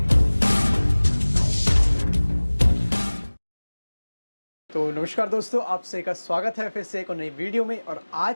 तो नमस्कार दोस्तों, आप सभी का स्वागत है फिर से एक और नई वीडियो में। और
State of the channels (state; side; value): inverted; both; correlation -1.00